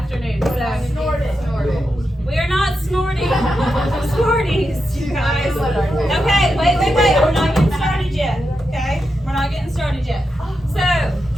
so Snort it. Snort it. we are not snorting Smarties, you guys. Okay, wait, we're not getting started yet, okay? We're not getting started yet. So,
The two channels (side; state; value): both; normal; correlation 0.87